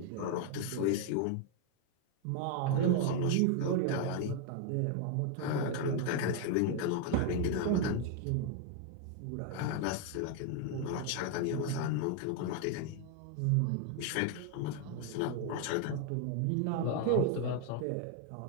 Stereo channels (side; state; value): both; different; correlation 0.00